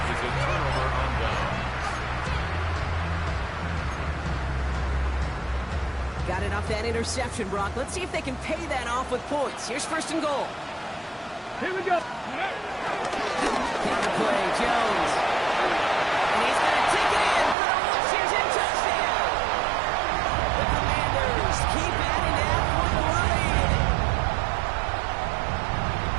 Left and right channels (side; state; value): left; drops out; at 17.6 s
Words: is a turnover on downs. Got it off that interception, Brock. Let's see if they can pay that off with points. Here's first and goal. Here we go. Counter play, Jones. And he's going to take it in for the Washington touchdown. The Commanders keep adding to that point lead.